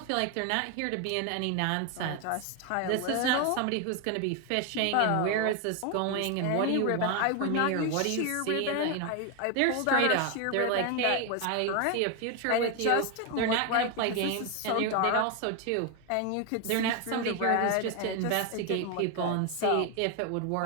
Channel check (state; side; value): different; both; correlation 0.01